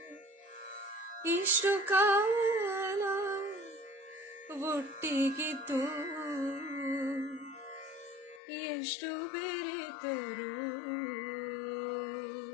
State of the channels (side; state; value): right; drops out; at 8.4 s